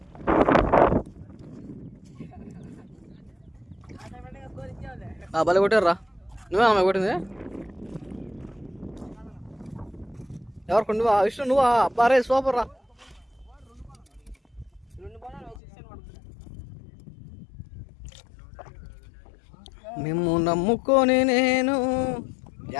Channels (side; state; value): right; drops out; at 15.6 s